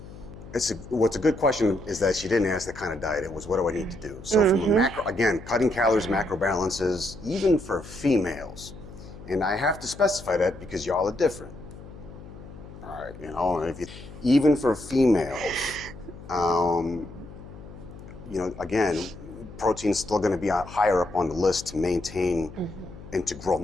What's a good question is that she didn't ask the kind of diet. It was, what do I need to do? So from a macro, again, cutting calories, macro balances, even for females. And I have to specify that because y'all are different. All right, even for females, again, protein's still going to be higher up on the list to maintain and to grow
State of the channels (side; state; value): left; noise; hum, 16 dB below the sound